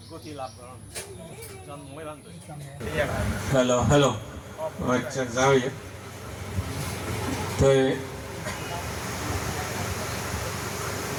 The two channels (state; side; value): identical; both; correlation 1.00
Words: গতি লাভ কৰা জন্মই বান্ধ হেল্ল' আচ্ছা যাও তো